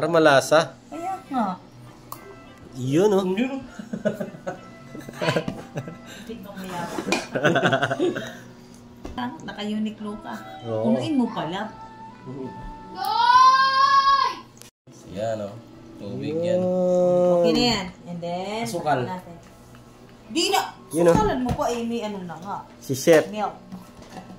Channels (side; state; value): both; identical; correlation 1.00